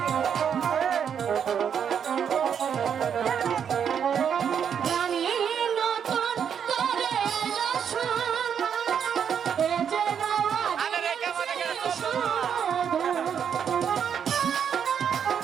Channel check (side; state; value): left; quieter; 7.9 dB